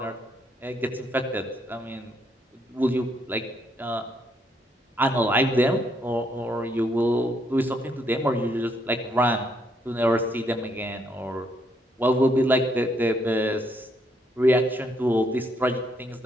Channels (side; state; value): both; normal; correlation 0.73